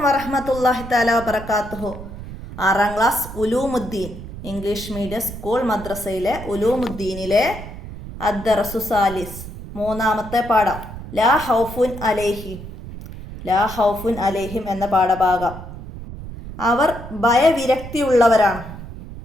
വറഹ്മത്തുള്ളാഹി തആല വബറകാതുഹു. 6ാം class Uloomuddeen English medium school മദ്രസയിലെ ഉലൂമുദ്ദീനിലെ അദ്ദറസു സാലിസ് 3ാമത്തെ പാഠം ലാ ഹൗഫുൻ അലൈഹിം. ലാ ഹൗഫുൻ അലൈഹിം എന്ന പാഠഭാഗം. അവർ ഭയവിരക്തിയുള്ളവരാണ്.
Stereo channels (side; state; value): right; noise; rumble, 12 dB below the sound